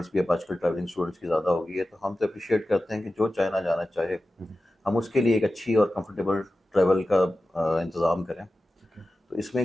भी अब आजकल ट्रैवलिंग स्टूडेंट्स की ज़्यादा हो गई है, तो हम तो अप्रिशिएट करते हैं कि जो चाइना जाना चाहे हम उसके लिए एक अच्छी और कंफर्टेबल ट्रैवल का इंतज़ाम करें। तो इसमें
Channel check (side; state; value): both; normal; correlation 0.94